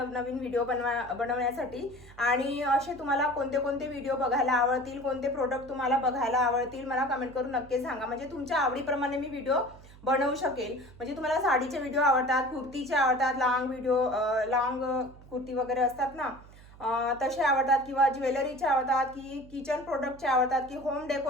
व्हिडिओ बनवण्यासाठी. आणि असे तुम्हाला कोणते कोणते व्हिडिओ बघायला आवडतील, कोणते प्रोडक्ट तुम्हाला बघायला आवडतील मला कमेंट करून नक्की सांगा. म्हणजे तुमच्या आवडीप्रमाणे मी व्हिडिओ बनवू शकेल. म्हणजे तुम्हाला साडीचे व्हिडिओ आवडतात, कुर्तीचे आवडतात, लॉंग कुर्ती वगैरे असतात ना तसे आवडतात किंवा ज्वेलरीचे आवडतात की किचन प्रोडक्टचे आवडतात की होम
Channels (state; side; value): noise; right; hum, 21 dB below the sound